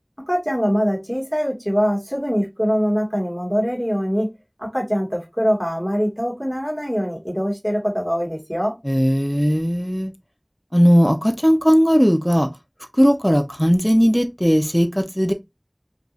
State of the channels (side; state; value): both; identical; correlation 1.00